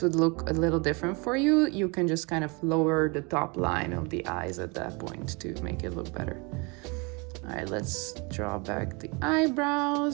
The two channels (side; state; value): left; quieter; 29.9 dB